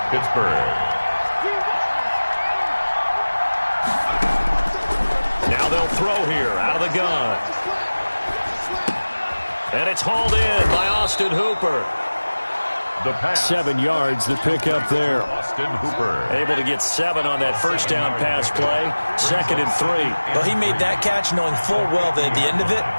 Pittsburgh. Now they'll throw here out of the gun. And it's hauled in by Austin Hooper. The pass. 7 yards, the pickup there. Austin Hooper. Able to get 7 on that first down pass play. 2nd and 3. Well, he made that catch knowing full well that at the end of it,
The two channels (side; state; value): both; inverted; correlation -1.00